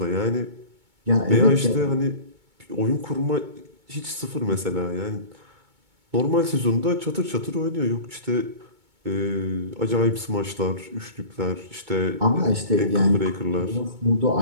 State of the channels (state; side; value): late; left; 2.2 ms